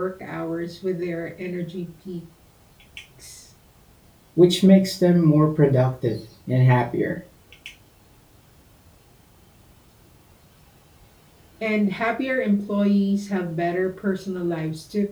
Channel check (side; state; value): both; identical; correlation 1.00